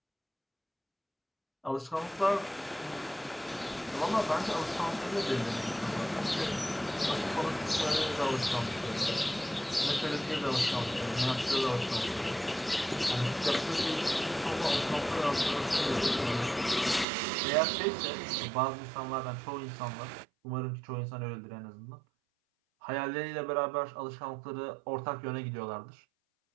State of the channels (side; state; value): left; drops out; at 17.1 s